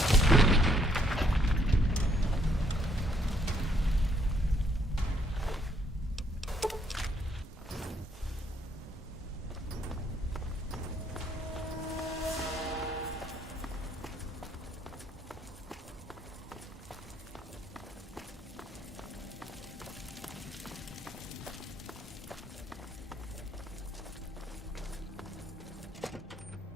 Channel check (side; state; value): both; normal; correlation 0.69